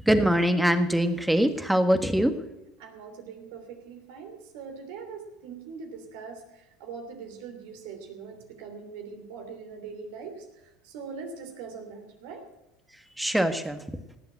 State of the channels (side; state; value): both; normal; correlation 0.88